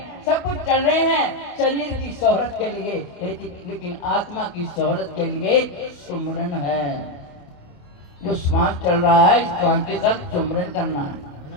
सब कुछ चल रहे हैं शरीर की शोहरत के लिए, लेकिन आत्मा की शोहरत के लिए सुमरन है। जो श्वास चल रहा है, श्वास के साथ सुमरन करना है।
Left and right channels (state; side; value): late; right; 28 ms